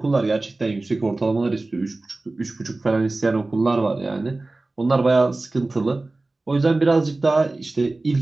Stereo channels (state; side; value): quieter; left; 3.1 dB